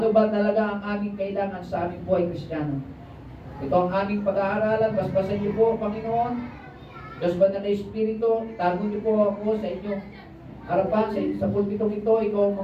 ba talaga ang aming kailangan sa aming buhay Kristiyano. Ito ang aming pag-aaralan. Basbasan niyo po, Panginoon. Diyos ba na Espiritu, itago niyo po ako sa inyong harapan, sa pulpitong ito, ikaw ang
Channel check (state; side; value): identical; both; correlation 1.00